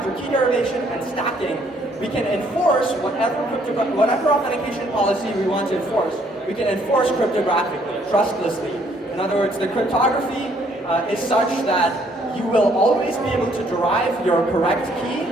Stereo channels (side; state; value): both; normal; correlation 0.66